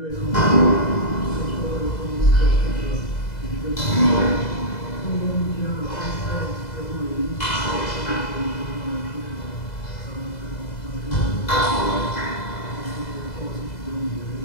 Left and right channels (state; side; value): late; right; 2.0 ms